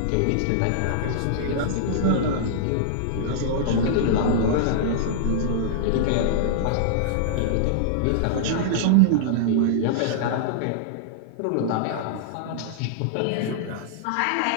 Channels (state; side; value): different; both; correlation -0.02